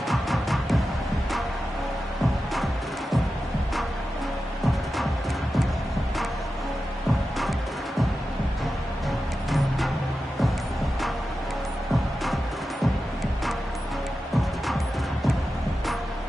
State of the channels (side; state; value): both; normal; correlation 0.92